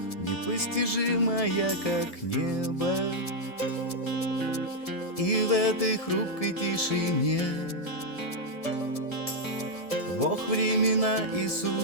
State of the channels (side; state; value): right; late; 1.7 ms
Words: непостижимая, как небо. И в этой хрупкой тишине Бог времена и